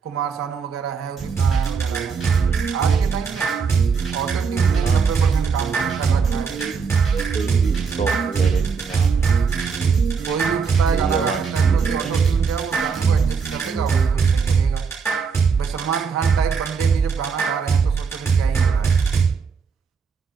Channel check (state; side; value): quieter; left; 5.6 dB